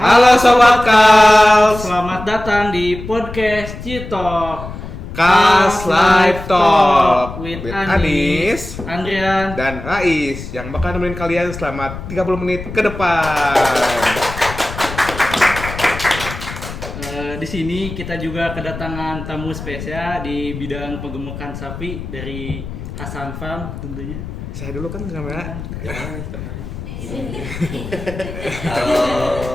Halo Sobat Kals, Selamat datang di podcast Citok Kals Live Talk with Anis, Andrian, dan Rais yang bakal nemenin kalian selama 30 menit ke depan. Di sini kita juga kedatangan tamu spesial di bidang penggemukan sapi dari Hasan Farm tentunya. Saya dulu kan kamera.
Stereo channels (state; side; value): noise; left; rumble, 10 dB below the sound